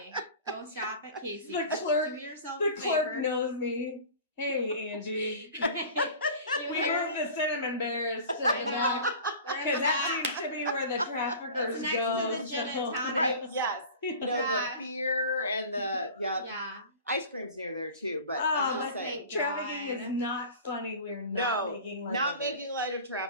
go shop at Casey's. The clerk- Do yourself The a clerk favor. knows me. Hey, Angie. You We hear? moved the cinnamon bears to I the know. back. They're in Because the that back. seems to be where the traffickers It's next go. to the gin and tonic. Right, yes. The Yeah. beer and the, Yeah. ice cream's near there too, but Oh, I'm but just saying. thank Trafficking is not funny. We're No, not making light not of it. making light of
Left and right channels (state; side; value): inverted; both; correlation -0.39